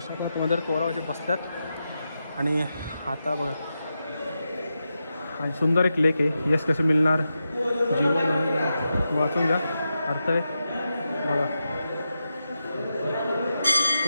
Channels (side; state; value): both; inverted; correlation -0.89